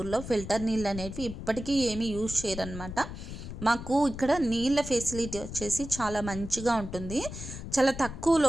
ఫిల్టర్ నీళ్ళు అనేవి ఇప్పటికీ ఏమీ యూజ్ చేయరనమాట. మాకు ఇక్కడ నీళ్ళ ఫెసిలిటీ వచ్చేసి చాలా మంచిగా ఉంటుంది. చాలా తక్కువ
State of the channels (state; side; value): noise; left; rumble, 9 dB below the sound